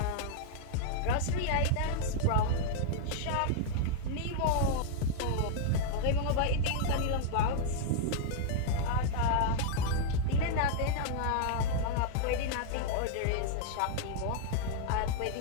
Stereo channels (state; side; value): different; both; correlation -0.01